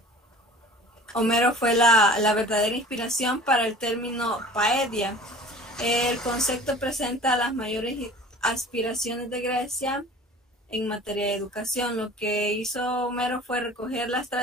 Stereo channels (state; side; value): normal; both; correlation 0.44